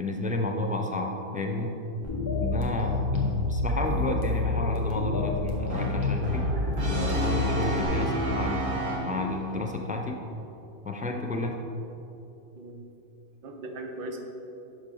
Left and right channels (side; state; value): left; late; 2.5 ms